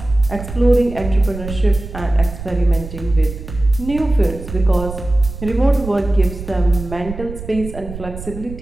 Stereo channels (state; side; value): noise; right; rumble, 11 dB below the sound